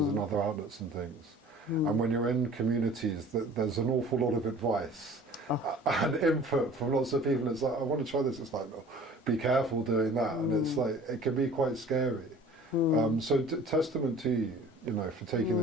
in other outlets and things. And when you're in communities, there's an awful lot of advice and input from lots of people. It's like, I want to try this. It's like, no, be careful doing that. And it's like, it can be quite scary. So testament to you, you know, for taking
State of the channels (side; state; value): both; normal; correlation 0.47